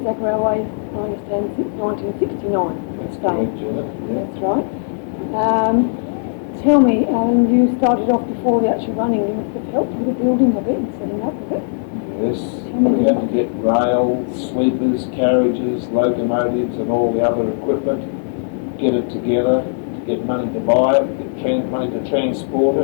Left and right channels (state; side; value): silent; right; digital silence